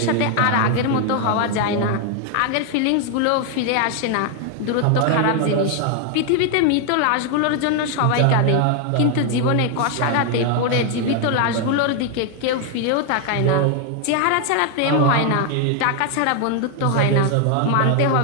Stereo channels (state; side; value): different; both; correlation 0.01